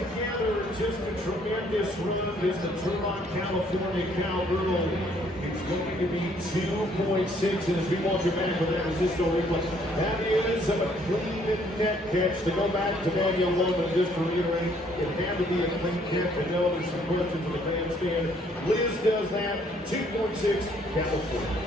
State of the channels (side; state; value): both; normal; correlation 0.64